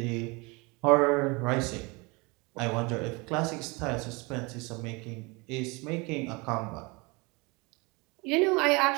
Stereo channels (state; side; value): quieter; left; 27.2 dB